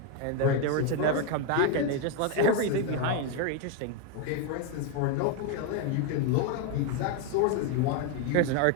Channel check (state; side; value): different; both; correlation 0.01